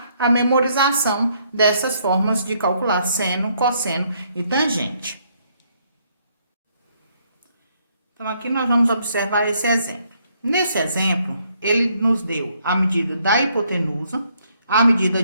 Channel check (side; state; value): both; inverted; correlation -0.70